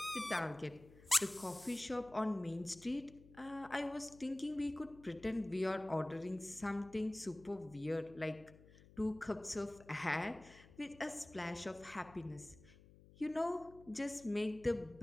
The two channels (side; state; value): left; noise; hum, 21 dB below the sound